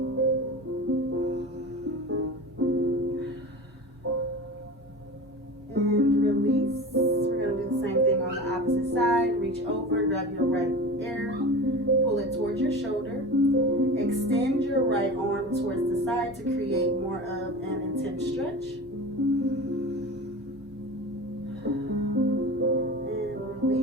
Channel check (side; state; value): both; normal; correlation 0.32